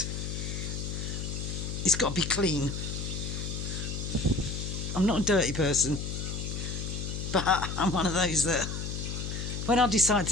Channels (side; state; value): left; noise; hum, 4 dB below the sound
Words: it's got to be clean. I'm not a dirty person, but I'm one of those that when I decide